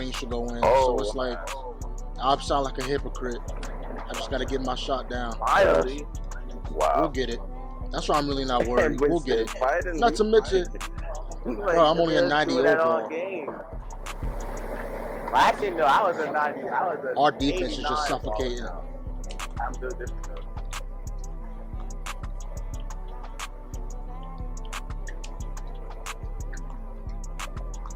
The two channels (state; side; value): identical; both; correlation 1.00